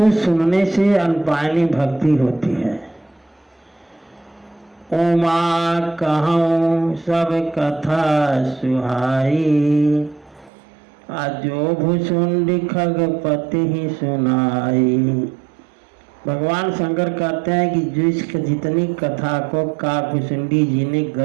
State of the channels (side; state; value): left; drops out; at 10.5 s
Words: सुनने से अनपायनी भक्ति होती है। उमा कहूँ सब कथा सुहाई, आजो भुसुंडी खगपति ही सुनाई। भगवान शंकर कहते हैं कि जिसक जितनी कथा को काकभुसुंडी जी ने